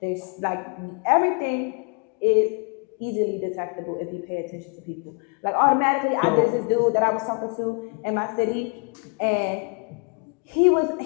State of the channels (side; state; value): right; quieter; 38.4 dB